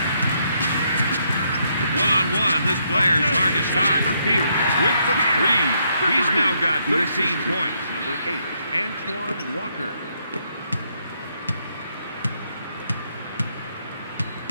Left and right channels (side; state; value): both; inverted; correlation -0.74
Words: One-on-one, this player is hard to stop. Pierce with the 3. He's now got 13 points. Number 8. Antoine Walker.